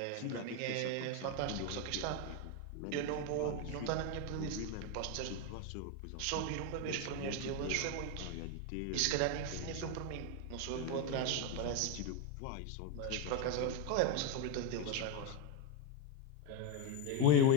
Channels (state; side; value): different; both; correlation 0.03